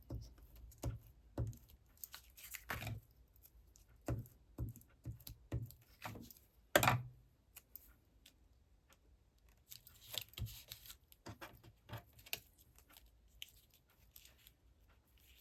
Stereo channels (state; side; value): identical; both; correlation 1.00